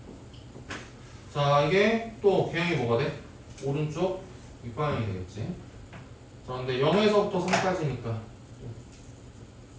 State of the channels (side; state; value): both; identical; correlation 1.00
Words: 자 이게 또 개형이 뭐가 돼? 오른쪽 윗방향이 되겠지. 자 근데 0에서부터 3까지니까